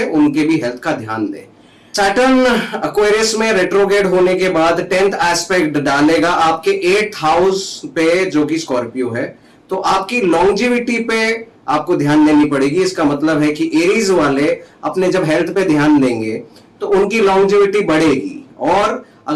उनके भी हेल्थ का ध्यान दे। सैटर्न एक्वेरियस में रेट्रोग्रेड होने के बाद 10th एस्पेक्ट डालेगा आपके 8th हाउस पे जो कि स्कॉर्पियो है, तो आपकी लॉन्जिविटी पे आपको ध्यान देनी पड़ेगी। इसका मतलब है कि एरीज वाले अपने जब हेल्थ पे ध्यान देंगे तो उनकी लॉन्जिविटी बढ़ेगी। और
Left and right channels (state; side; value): identical; both; correlation 1.00